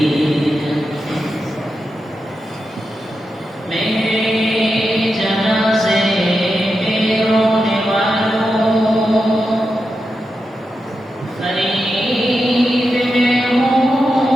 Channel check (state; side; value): normal; both; correlation 0.88